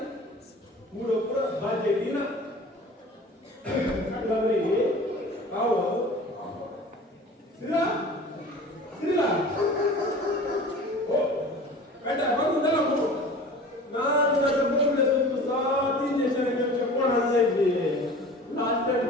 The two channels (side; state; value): both; normal; correlation 0.41